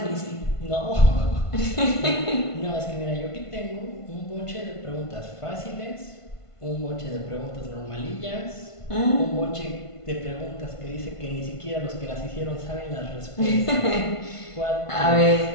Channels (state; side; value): late; right; 1.5 ms